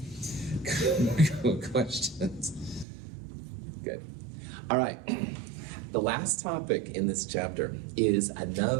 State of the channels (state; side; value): drops out; left; at 2.9 s